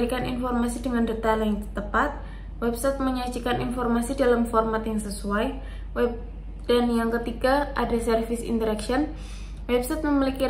informasi dengan detail yang tepat, website menyajikan informasi dalam format yang sesuai, dan yang ketiga ada service interaction. Website memiliki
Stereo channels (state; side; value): identical; both; correlation 1.00